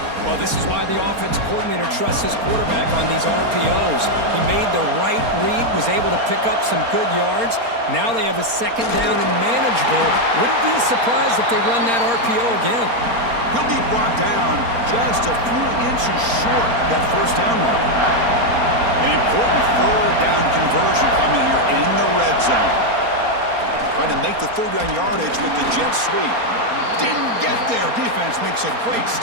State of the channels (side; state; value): left; late; 4.3 ms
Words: Well, this is why the offensive coordinator trusts his quarterback on these RPOs. He made the right read, was able to pick up some good yards. Now they have a 2nd down and manageable. Wouldn't be surprised if they run that RPO again. He'll be brought down just a few inches short of that first down mark. An important 3rd down conversion coming here in the red zone. Trying to make the 3rd down yardage with the jet sweep. Didn't get there. Defense makes a great